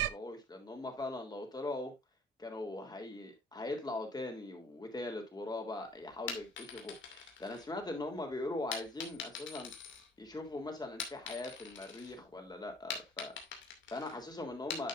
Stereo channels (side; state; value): both; normal; correlation 0.54